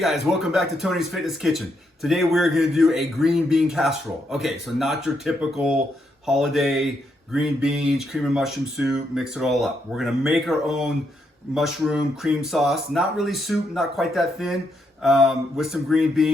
guys, welcome back to Tony's Fitness Kitchen. Today we're going to do a green bean casserole. Okay, so not your typical holiday green beans, cream and mushroom soup, mix it all up. We're going to make our own mushroom cream sauce. Not really soup, not quite that thin, with some green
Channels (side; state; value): both; normal; correlation 0.78